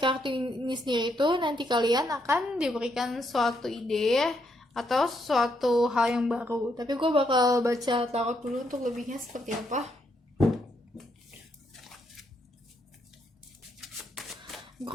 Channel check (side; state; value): both; normal; correlation 0.76